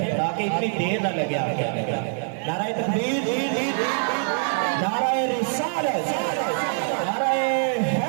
ताकि इतनी देर ना लगे आगे। नाराए तकबीर, नाराए रिसालत, नाराए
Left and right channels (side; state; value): left; silent; digital silence